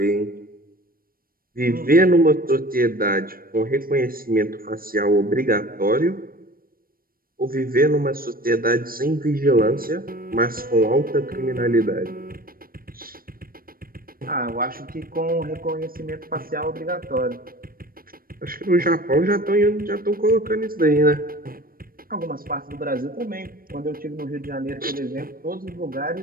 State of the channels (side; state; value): left; late; 0.42 ms